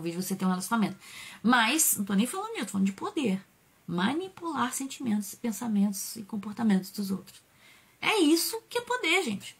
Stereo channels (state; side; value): identical; both; correlation 1.00